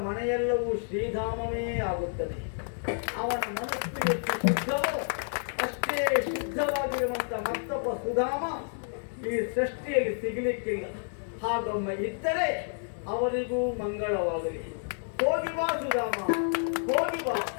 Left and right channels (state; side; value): silent; right; digital silence